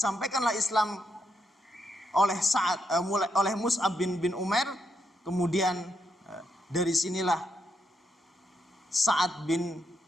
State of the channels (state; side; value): normal; both; correlation 0.80